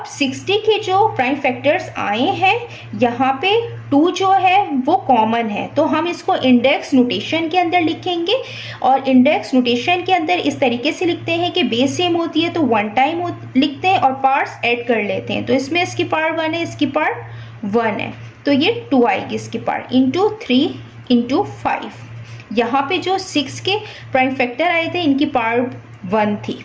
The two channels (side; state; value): both; identical; correlation 1.00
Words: 60 के जो प्राइम फैक्टर्स आए हैं यहाँ पे 2 जो है वो कॉमन है, तो हम इसको इंडेक्स नोटेशन के अंदर लिखेंगे। और इंडेक्स नोटेशन के अंदर इस तरीके से लिखते हैं कि बेस सेम होती है तो 1 टाइम लिखते हैं और पार्ट्स ऐड कर लेते हैं। तो इसमें इसकी पार्ट 1 है, इसकी पार्ट 1 है, तो ये 2 आएगी इसकी पार्ट इंटू 3 इंटू 5। यहाँ पे जो 6 के प्राइम फैक्टर आए थे इनकी पार्ट 1 थी।